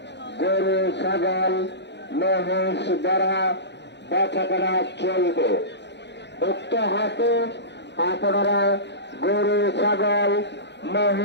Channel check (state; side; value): late; right; 0.51 ms